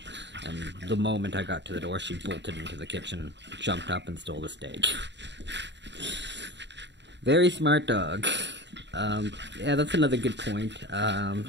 And the moment I got to the door, she bolted into the kitchen, jumped up, and stole the steak. Very smart dog. Yeah, that's another good point.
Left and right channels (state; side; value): late; left; 0.52 ms